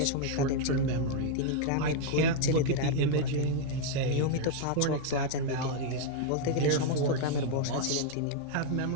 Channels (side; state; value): both; different; correlation 0.00